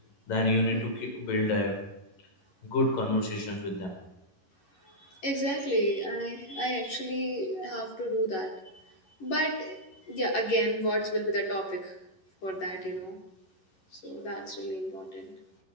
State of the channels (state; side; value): late; right; 11 ms